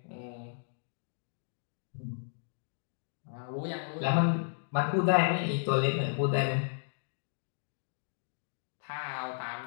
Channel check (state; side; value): silent; right; digital silence